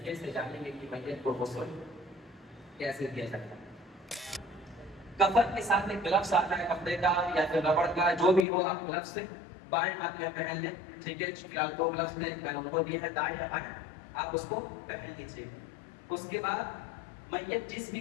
से जानेंगे कि मैयत को गुस्ल कैसे दिया जाता है। कफन के साथ एक ग्लव्स आता है कपड़े का या फिर रबड़ का, जो भी हो, आप ग्लव्स से बाएं हाथ में पहन लें, ठीक है। फिलहाल दो ग्लव्स ने उनको दिए हैं, दाएं या बाएं, आप उसको पहन लीजिए। उसके बाद मैयत जिस भी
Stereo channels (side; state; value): right; drops out; at 8.5 s